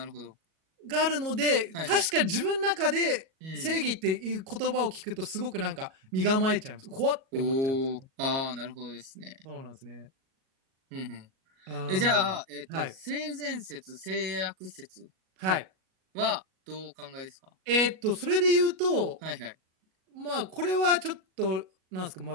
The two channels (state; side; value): late; left; 37 ms